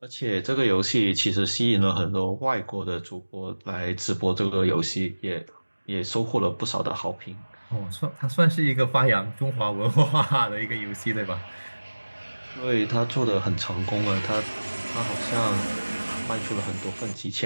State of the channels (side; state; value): both; inverted; correlation -1.00